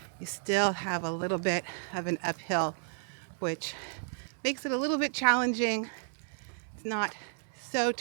you still have a little bit of an uphill, which makes it a little bit challenging. It's not so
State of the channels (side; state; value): left; silent; digital silence